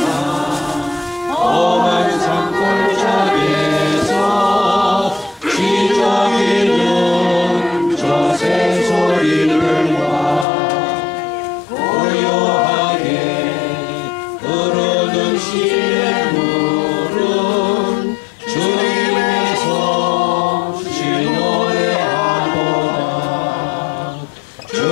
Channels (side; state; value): right; drops out; at 10.5 s